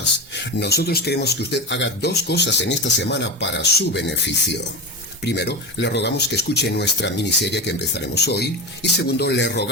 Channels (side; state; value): both; normal; correlation 0.22